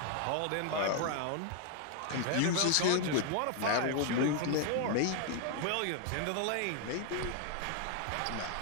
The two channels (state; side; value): different; both; correlation 0.00